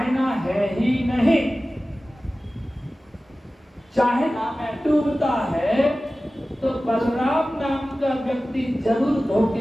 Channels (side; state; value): both; normal; correlation 0.96